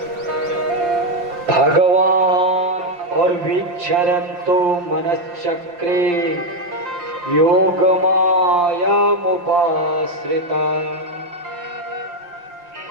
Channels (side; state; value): left; late; 5.7 ms